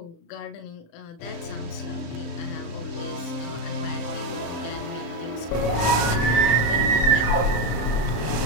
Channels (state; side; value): late; right; 34 ms